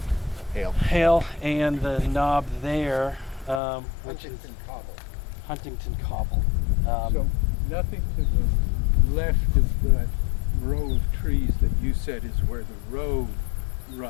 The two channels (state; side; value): drops out; right; at 3.6 s